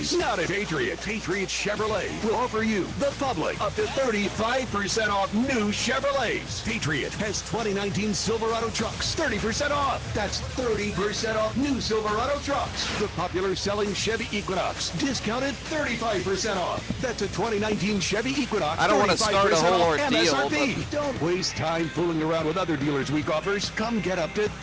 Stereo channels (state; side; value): identical; both; correlation 1.00